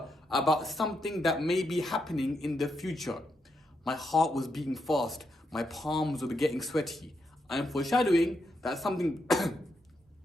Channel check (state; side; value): normal; both; correlation 0.82